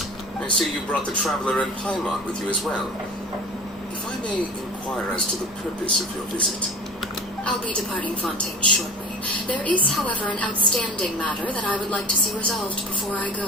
I see you brought the Traveler and Paimon with you as well. If I may inquire as to the purpose of your visit. I'll be departing Fontaine shortly. There is, however, an outstanding matter that I would like to see resolved before I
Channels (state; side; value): normal; both; correlation 0.39